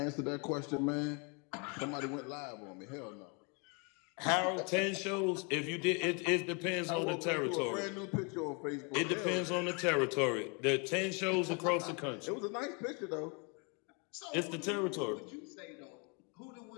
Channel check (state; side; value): quieter; right; 34.3 dB